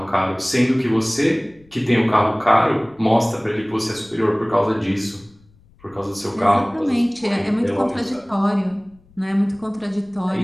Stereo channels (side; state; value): left; noise; rumble, 30 dB below the sound